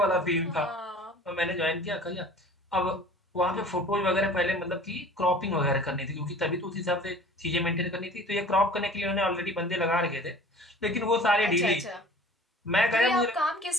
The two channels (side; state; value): both; normal; correlation 0.45